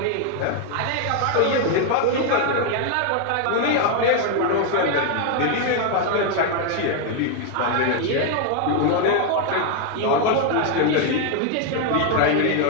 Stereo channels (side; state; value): both; different; correlation 0.01